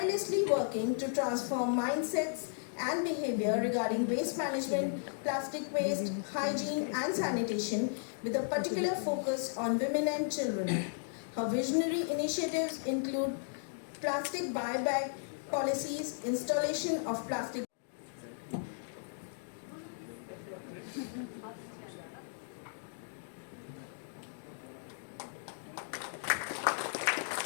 working to transform mindsets and behavior regarding waste management, plastic waste, hygiene and sanitation with a particular focus on women and children. Her visionary initiatives include plastic buyback policies, installation of plastic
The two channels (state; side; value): silent; right; digital silence